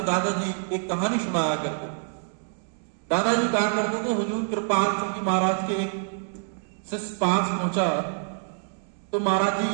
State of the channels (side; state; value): left; silent; 61 dB below the other